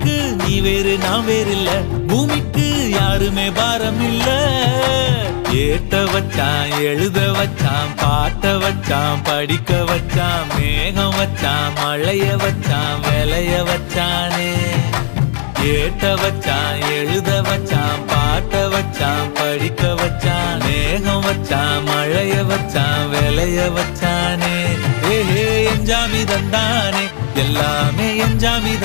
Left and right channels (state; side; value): silent; right; digital silence